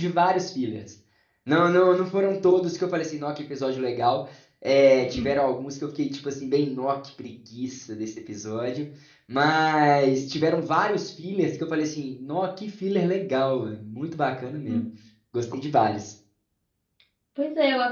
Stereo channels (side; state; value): both; identical; correlation 1.00